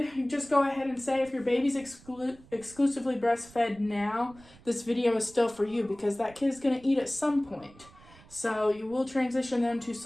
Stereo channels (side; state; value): right; noise; rumble, 24 dB below the sound